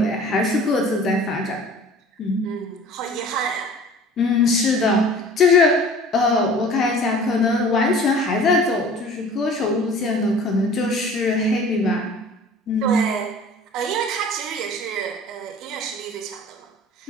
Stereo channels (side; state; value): both; normal; correlation 0.45